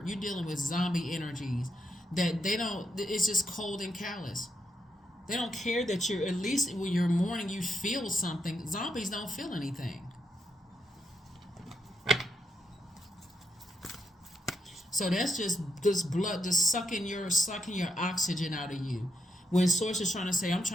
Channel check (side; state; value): both; normal; correlation 0.81